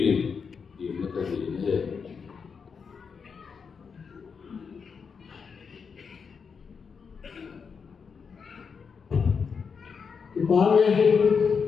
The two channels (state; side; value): quieter; right; 5.9 dB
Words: in ti na ka ni ne ki pa me